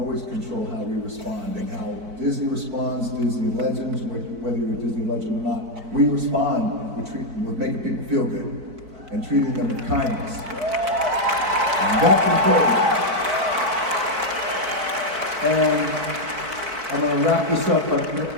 control how we respond and how Disney responds, Disney legends, whether you're a Disney legend or not, we respond, we're making people feel good and treating them with kindness. And that's important. And I'm going to wrap this up, but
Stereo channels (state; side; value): late; left; 4.5 ms